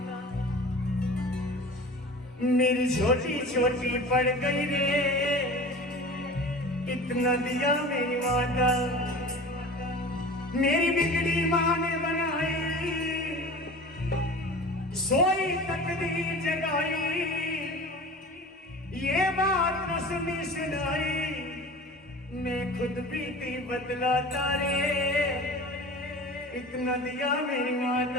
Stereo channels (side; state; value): both; normal; correlation 0.38